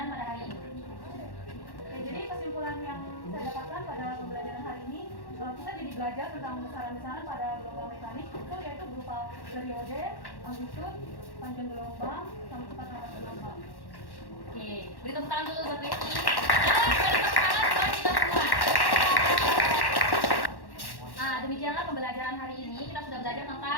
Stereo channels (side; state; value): right; late; 1.1 ms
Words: pada hari ini. Ya, jadi kesimpulan yang saya dapatkan pada pembelajaran hari ini, kita jadi belajar tentang besaran-besaran pada gelombang mekanik itu yaitu berupa periode, amplitude, panjang gelombang, sama cepat rambat gelombang. Oke, beri tepuk tangan dulu buat Becky. Dan beri tepuk tangan buat kita semua. Nah, demikianlah pembelajaran hari ini. Kita sudah belajar